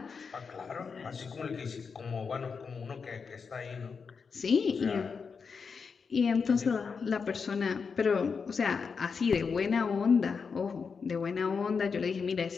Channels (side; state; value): right; quieter; 5.5 dB